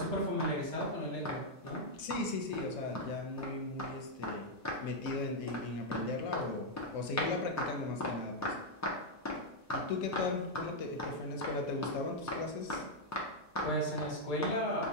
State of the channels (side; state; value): both; normal; correlation -0.03